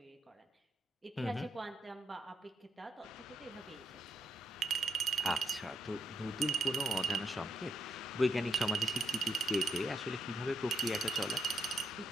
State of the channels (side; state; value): both; normal; correlation 0.78